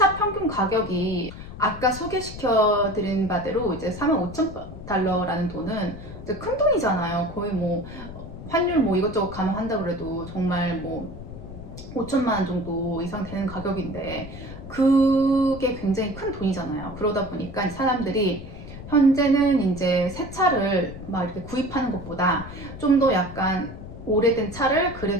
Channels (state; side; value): noise; left; rumble, 12 dB below the sound